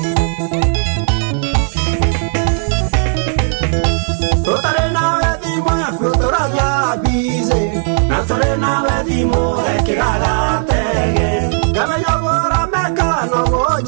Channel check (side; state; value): left; silent; digital silence